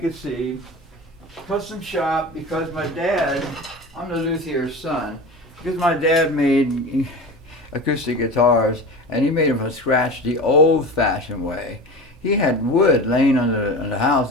see, custom shop, because my dad, I'm the luthier's son, because my dad made acoustic guitars, and he made them from scratch the old-fashioned way. He had wood laying on the house,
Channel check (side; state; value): both; normal; correlation 0.31